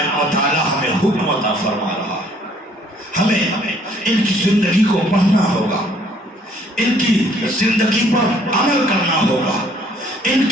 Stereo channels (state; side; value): normal; both; correlation 0.61